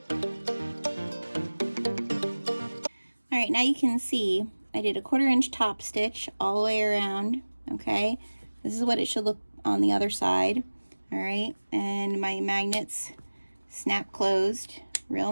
All right, now you can see I did a 1/4 inch top stitch all the way around, okay? This is what it should look on the other side, all right? And my magnets snap closed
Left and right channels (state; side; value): inverted; both; correlation -1.00